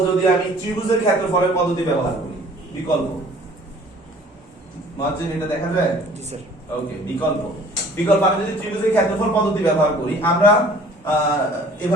যদি আমি ত্রিভুজের ক্ষেত্রফলের পদ্ধতি ব্যবহার করি বিকল্প মহাজন এটা দেখা যায় জি স্যার ওকে বিকল্প আমি যদি ত্রিভুজের ক্ষেত্রফল পদ্ধতি ব্যবহার করি আমরা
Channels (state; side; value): normal; both; correlation 0.52